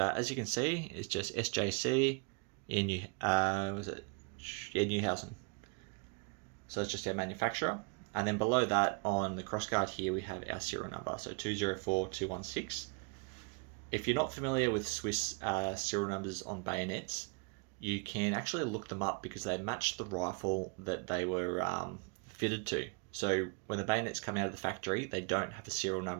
you can see, it's just SJC in Newhausen. So it's just our manufacturer. And then below that on the crossguard here, we have our serial number, so 204216. If you're not familiar with Swiss serial numbers on bayonets, you can actually look them up because they match the rifle that they were fitted to. So when the bayonets come out of the factory, they don't have a serial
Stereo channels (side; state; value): left; quieter; 34.9 dB